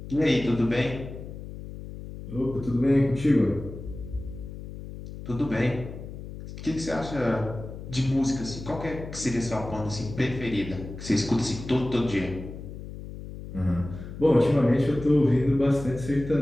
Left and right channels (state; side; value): noise; left; hum, 11 dB below the sound